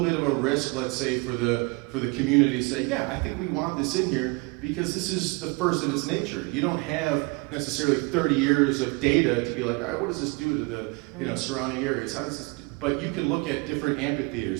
of a risk, let's say, for the community to say, yeah, I think we want this in here because this is the first of its nature. You don't have necessarily 30 years of data to be like, all right, what does this do to the you know, surrounding areas? How does this do? But you can look at different amphitheaters,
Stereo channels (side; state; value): left; quieter; 27.8 dB